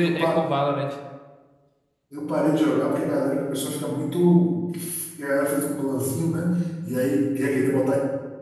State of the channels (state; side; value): identical; both; correlation 1.00